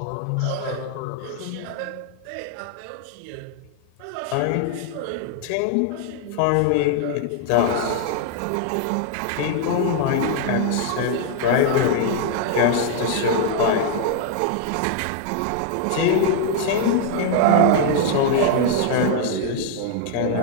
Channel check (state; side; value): different; both; correlation 0.00